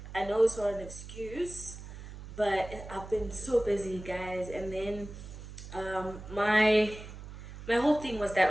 I know it's not an excuse, but I've been so busy, guys. And then my whole thing was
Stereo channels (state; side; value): noise; right; hum, 13 dB below the sound